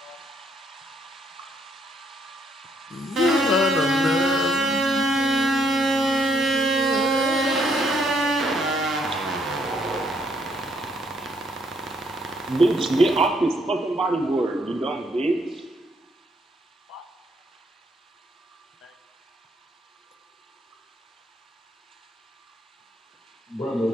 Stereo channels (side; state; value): both; normal; correlation 0.71